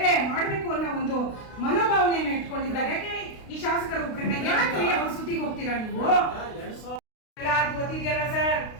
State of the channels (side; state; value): right; late; 32 ms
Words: ಮಾಡ್ಬೇಕು ಅನ್ನೋ ಒಂದು ಮನೋಭಾವನೆಯನ್ನ ಇಟ್ಕೊಂಡಿದ್ದಾರೆ. ಯಾಕೆ ಈ ಶಾಸಕರು ಯಾಕೆ ಅವ್ರ ಸುದ್ದಿಗೆ ಹೋಗ್ತೀರಾ ನೀವು? ಗೊತ್ತಿದೆಯಲ್ಲ ಸರ್,